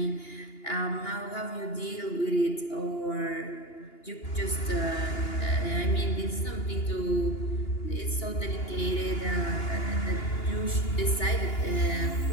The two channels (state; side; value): late; right; 2.9 ms